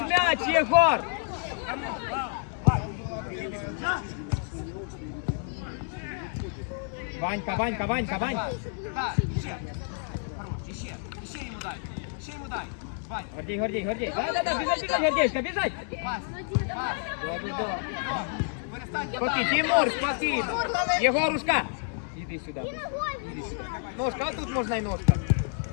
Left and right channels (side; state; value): right; silent; 59 dB below the other